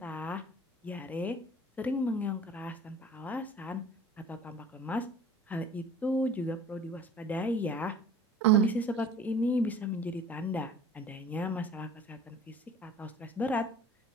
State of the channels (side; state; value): both; normal; correlation 0.46